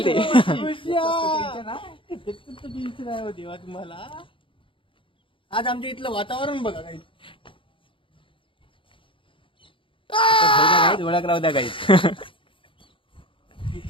ते. देवा तुम्हाला आज आमच्या इथलं वातावरण बघा काही ओळख राहू द्या काही.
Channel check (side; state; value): right; late; 0.25 ms